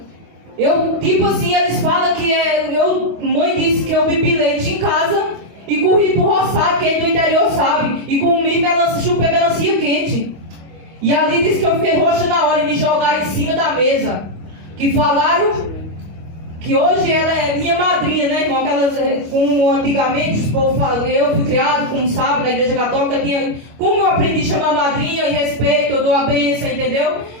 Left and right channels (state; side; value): late; left; 25 ms